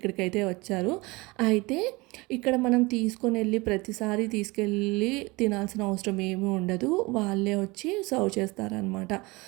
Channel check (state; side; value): quieter; left; 24.0 dB